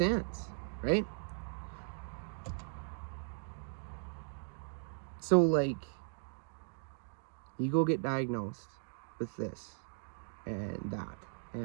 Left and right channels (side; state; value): left; silent; digital silence